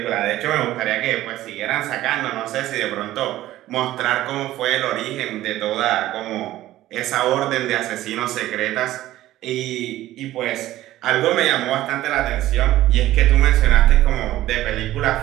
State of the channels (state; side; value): quieter; left; 14.9 dB